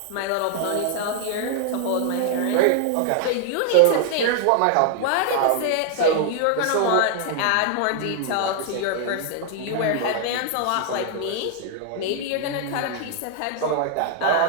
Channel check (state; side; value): different; both; correlation -0.01